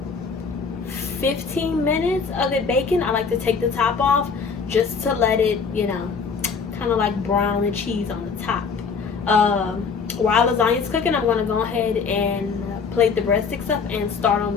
15 minutes of it baking, I like to take the top off just to let it, you know, kind of like brown and cheese on the top. While lasagna is cooking, I'm going to go ahead and plate the breadsticks up and start on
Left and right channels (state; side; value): quieter; right; 5.4 dB